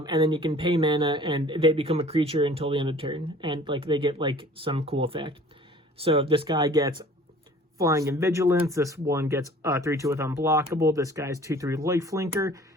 then you can pay mana, and they become a creature until the end of turn. And, they get, some cool effect. So, this guy gets Flying and Vigilance. This one gets 3/2 with Unblockable. This guy's 2/3 Lifelinker.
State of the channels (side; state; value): both; normal; correlation 0.49